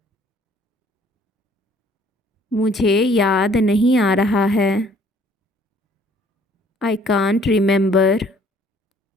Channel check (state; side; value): normal; both; correlation 0.59